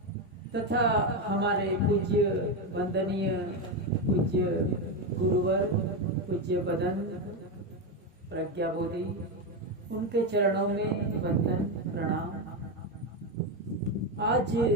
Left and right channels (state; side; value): normal; both; correlation 0.10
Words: तथा हमारे पूज्य वंदनीय पूज्य गुरुवर पूज्य बदन प्रज्ञा बोधि, उनके चरणों में वंदन प्रणाम। आज